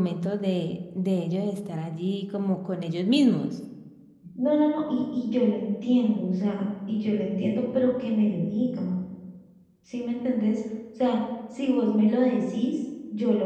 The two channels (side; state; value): both; identical; correlation 1.00